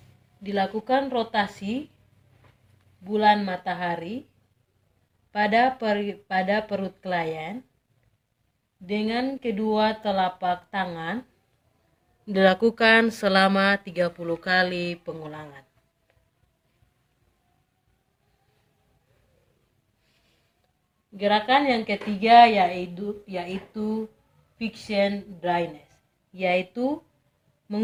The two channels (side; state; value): both; identical; correlation 1.00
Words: dilakukan rotasi bulan matahari pada perut klien dengan kedua telapak tangan, dilakukan selama 30 kali pengulangan. Gerakan yang ketiga yaitu fiction dryness, yaitu